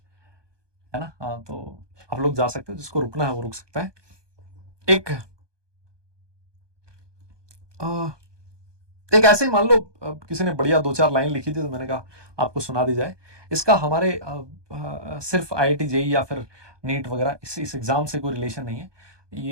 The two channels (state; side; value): late; left; 1.2 ms